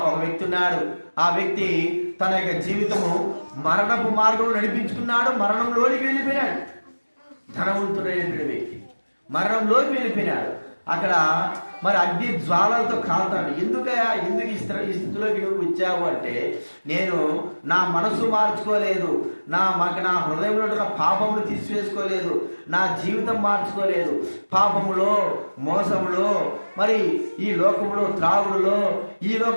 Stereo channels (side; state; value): both; inverted; correlation -1.00